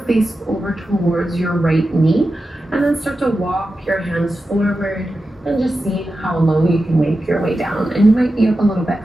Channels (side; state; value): both; normal; correlation 0.92